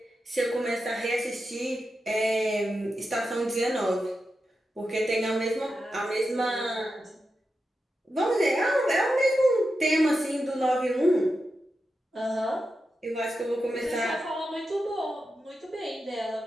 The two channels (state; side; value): normal; both; correlation 0.89